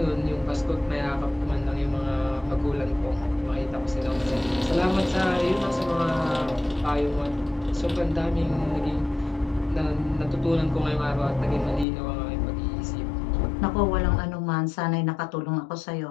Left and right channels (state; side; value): drops out; right; at 11.9 s